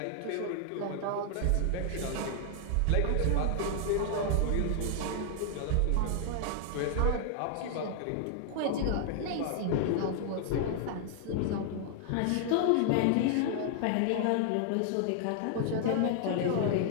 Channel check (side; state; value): both; different; correlation 0.00